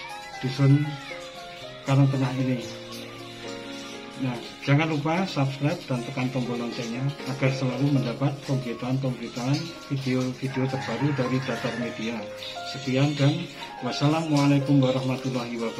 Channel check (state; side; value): identical; both; correlation 1.00